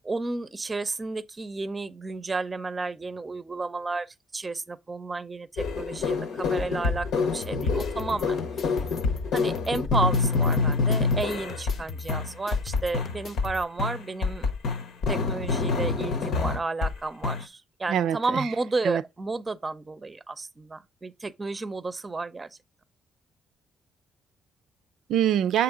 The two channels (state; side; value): normal; both; correlation 0.41